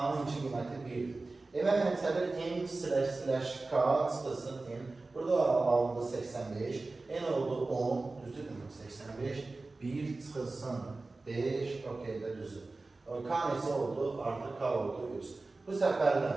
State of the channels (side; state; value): left; quieter; 3.4 dB